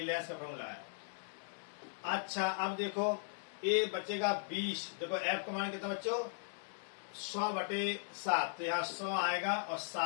लेंस का फॉर्मूला है। अच्छा, अब देखो ए बचेगा 20, देखो F का मान कितना बच्चों 100/7, तो यहाँ 100 आएगा और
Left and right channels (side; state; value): right; silent; digital silence